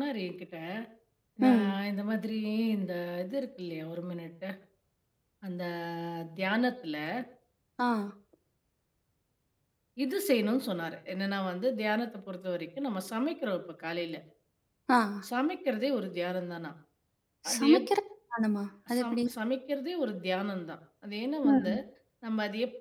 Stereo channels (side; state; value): both; identical; correlation 1.00